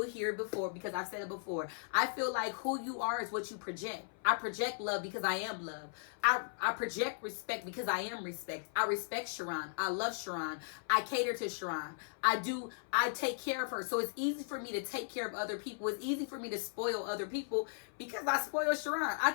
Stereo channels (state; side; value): silent; right; 53 dB below the other